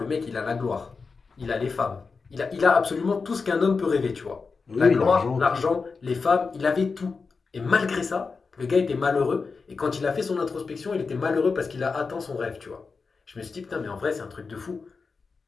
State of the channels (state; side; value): quieter; right; 4.7 dB